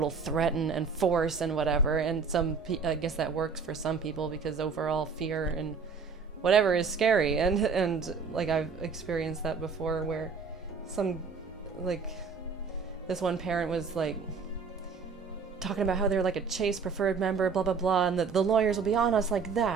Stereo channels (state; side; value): quieter; left; 5.4 dB